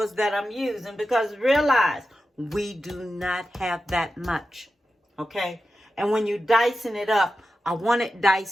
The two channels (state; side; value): normal; both; correlation 0.91